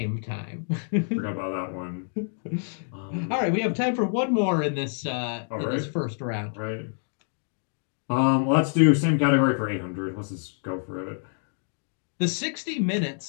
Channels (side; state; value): right; silent; 60 dB below the other